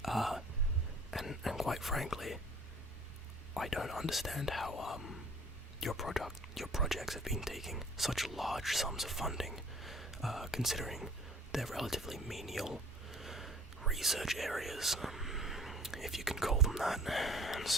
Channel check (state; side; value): normal; both; correlation 0.51